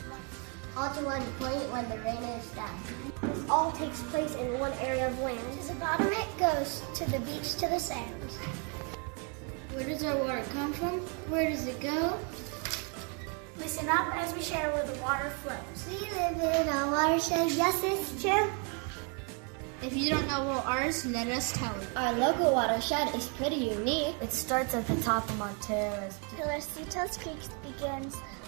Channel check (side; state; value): left; quieter; 36.6 dB